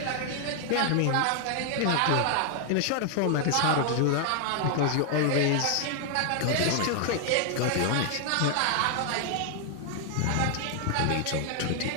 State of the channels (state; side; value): different; both; correlation 0.00